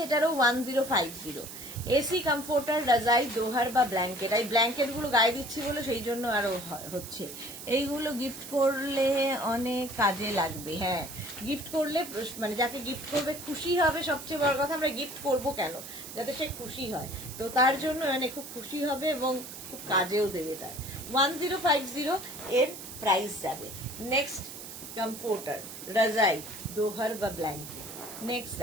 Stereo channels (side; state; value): right; noise; hiss, 11 dB below the sound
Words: এটারও 1050। এসি কমফোর্টার, রাজাই, দোহার বা ব্ল্যাঙ্কেট। এই ব্ল্যাঙ্কেট গুলো গায়ে দিচ্ছি বলে সেই জন্য আরো হচ্ছে। এইগুলো গিফট করলে অনেক কাজে লাগবে। হ্যাঁ, গিফট করলে মানে যাকে গিফট করবে খুশি হবে, সবচেয়ে বড় কথা। আমরা গিফট করব কেন? যাতে সে খুশি হয়, তো তার জন্য মানে খুব খুশি হবে এবং খুব কাজেও দেবে তার। 1050 এর প্রাইস যাবে। নেক্সট কমফোর্টার, রাজাই, দোহার বা ব্ল্যাঙ্কেট। নেক্সট